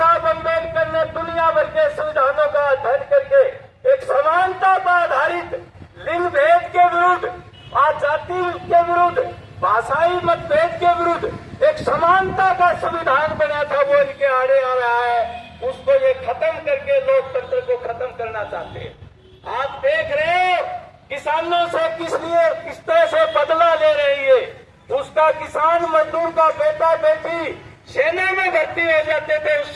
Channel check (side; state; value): both; identical; correlation 1.00